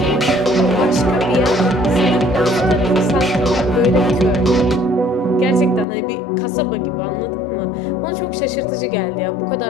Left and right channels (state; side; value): drops out; right; at 5.9 s